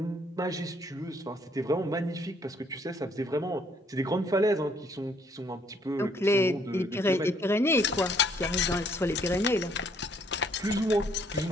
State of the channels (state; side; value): normal; both; correlation 0.65